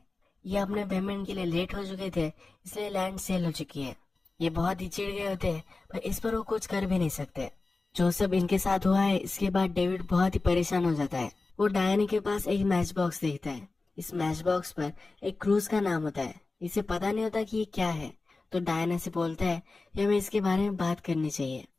ये अपने पेमेंट के लिए लेट हो चुके थे, इसलिए लैंड सेल हो चुकी है। ये बहुत ही चिढ़ गए होते हैं, पर इस पर वो कुछ कर भी नहीं सकते। जो सब इनके साथ हुआ है इसके बाद डेविड बहुत ही परेशान हो जाता है। वो डायना के पास एक मैच बॉक्स देखता है। इस मैच बॉक्स पर एक क्रूज का नाम होता है। इसे पता नहीं होता कि ये क्या है, तो डायना से बोलता है कि हमें इसके बारे में बात करनी चाहिए।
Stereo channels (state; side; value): quieter; right; 3.6 dB